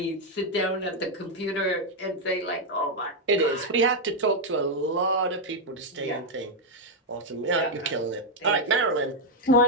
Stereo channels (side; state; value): both; normal; correlation 0.01